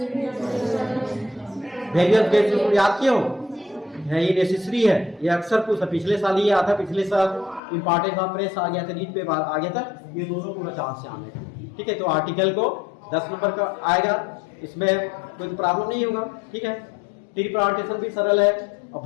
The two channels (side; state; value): right; drops out; at 7.6 s